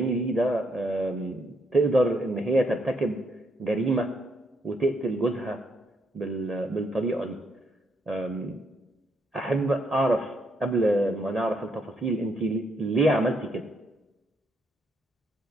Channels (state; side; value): normal; both; correlation 0.74